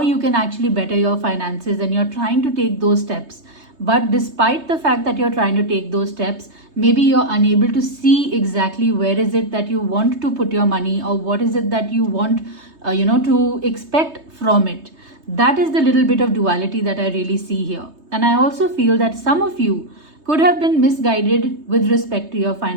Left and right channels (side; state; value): left; late; 3.2 ms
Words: you can actually better your finances and you're trying to take those steps. But despite the fact that you're trying to take those steps, maybe you're unable to see exactly where is it that you want to put your money, or what is it that you want to expect from it. That is the little bit of duality that I really see here. And I also feel that some of you could have been misguided with respect to your